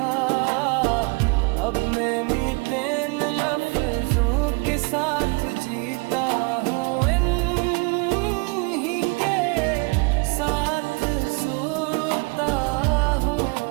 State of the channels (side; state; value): left; quieter; 30.0 dB